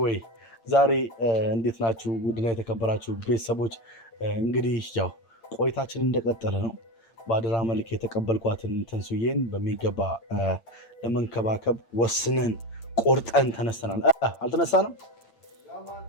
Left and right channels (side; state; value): right; late; 8.8 ms